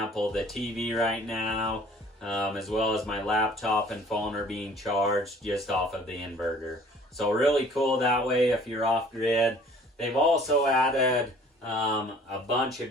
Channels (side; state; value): both; normal; correlation 0.52